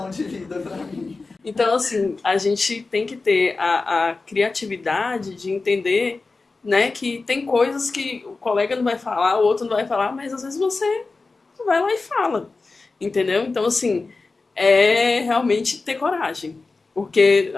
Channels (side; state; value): right; quieter; 3.8 dB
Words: de vida pra mim. Então, assim, a gente tem que ter a criatividade de entender, né, que tem coisas que o colega não vai falar, o outro não vai falar, mas às vezes você vai lá e fala, entendeu? Então, assim, é realmente ter coragem. Porque